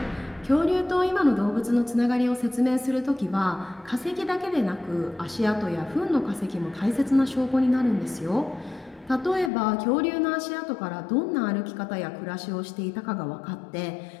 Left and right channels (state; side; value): drops out; right; at 9.5 s